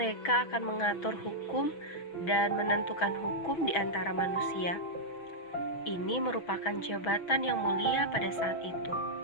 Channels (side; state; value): right; late; 6.1 ms